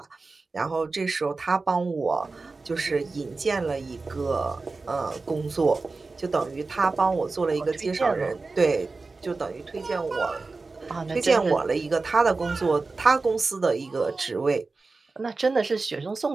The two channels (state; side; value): quieter; left; 3.8 dB